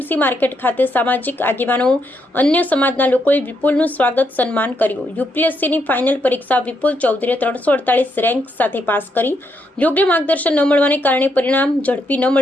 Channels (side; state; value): both; normal; correlation 0.78